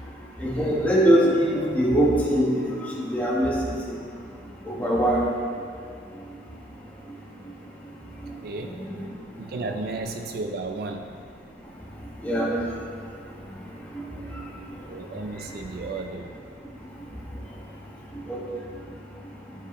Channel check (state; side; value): normal; both; correlation 0.66